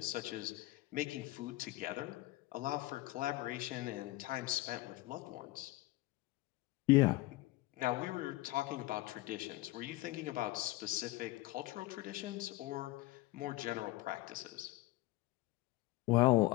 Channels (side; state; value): right; quieter; 19.2 dB